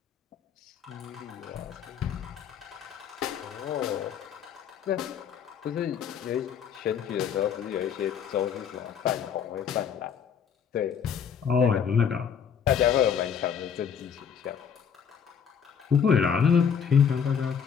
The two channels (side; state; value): right; quieter; 7.4 dB